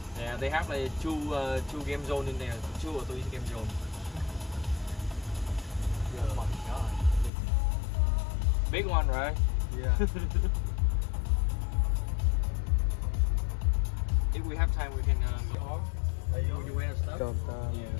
Yeah, they have like two game zone in there, 2 or 3 game zone. Oh my god. Big one, right? Yeah. If we have time, we can go off. Would you wear stuff? Yeah.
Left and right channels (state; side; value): drops out; right; at 7.3 s